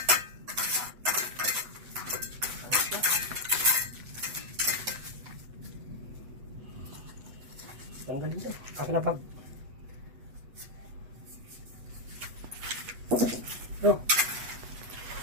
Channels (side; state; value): left; late; 8.1 ms